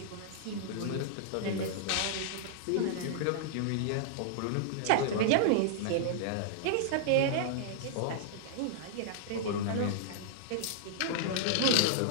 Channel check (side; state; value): both; different; correlation -0.01